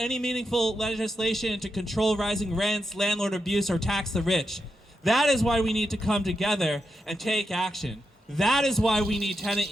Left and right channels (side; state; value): both; normal; correlation 0.86